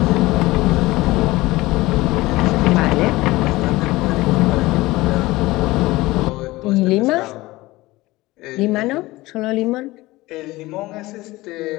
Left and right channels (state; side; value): quieter; right; 19.6 dB